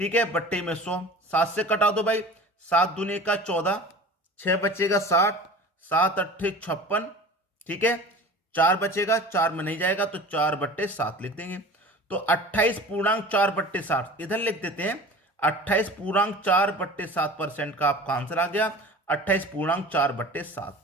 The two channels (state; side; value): normal; both; correlation 0.39